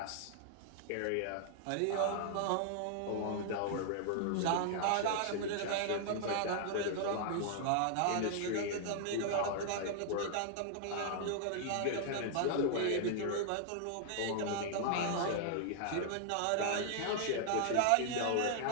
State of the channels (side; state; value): both; different; correlation -0.01